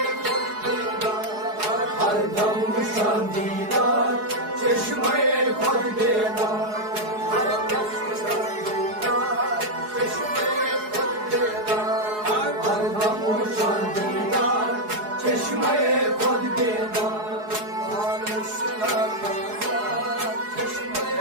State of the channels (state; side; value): late; left; 4.7 ms